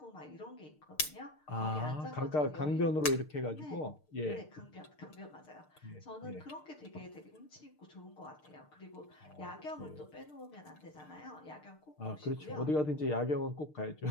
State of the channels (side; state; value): right; late; 6.6 ms